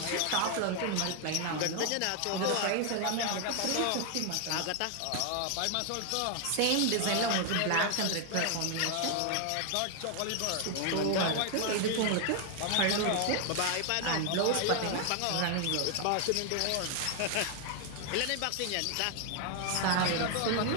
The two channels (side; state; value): both; different; correlation 0.00